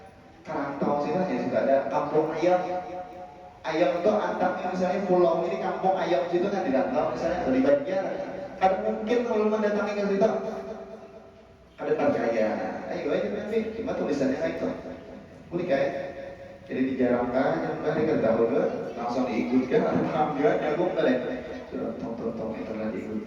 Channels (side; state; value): both; identical; correlation 1.00